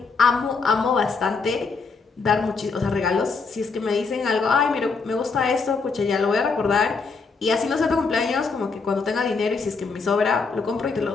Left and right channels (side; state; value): right; quieter; 4.6 dB